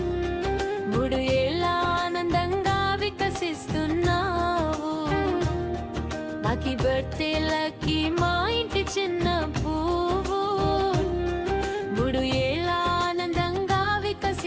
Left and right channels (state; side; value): identical; both; correlation 1.00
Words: 3 ఏళ్ళ ఆనందంగా వికసిస్తున్నావు. లక్కీ బర్త్డే లక్కీ మా ఇంటి చిన్న పువ్వు 3 ఏళ్ళ ఆనందంగా